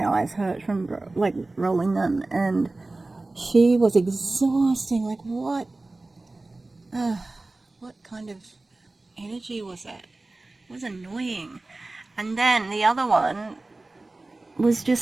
eyes hurt from rolling them, and she was exhausting. Like what kind of energy was that? It was annoying. And then the other one was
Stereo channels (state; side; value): quieter; left; 3.1 dB